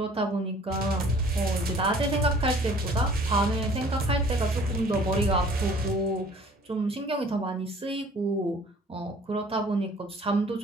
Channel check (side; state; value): both; normal; correlation 0.52